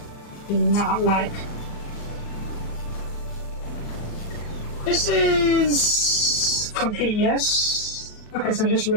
do not like. This is complete, yes. Okay, so just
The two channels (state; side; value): late; right; 37 ms